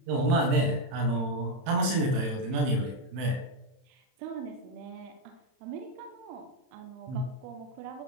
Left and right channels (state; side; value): late; left; 31 ms